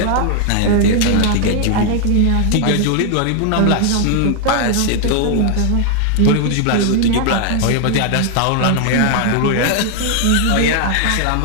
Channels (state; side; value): different; both; correlation 0.00